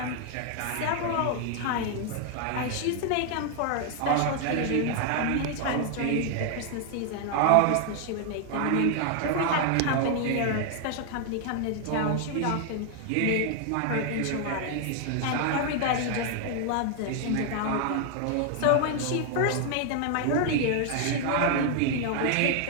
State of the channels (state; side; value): different; both; correlation 0.00